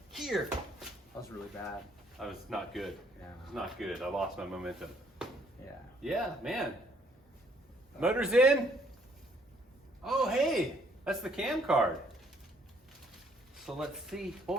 here. That was really bad. I was not good. Yeah. It was not good. I lost my momentum. Yeah. Yeah, man. Motor's in. Oh, hey, that's the cam card. So let's see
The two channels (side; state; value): both; normal; correlation 0.65